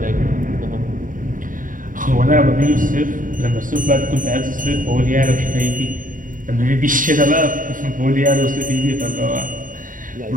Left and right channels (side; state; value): left; late; 0.39 ms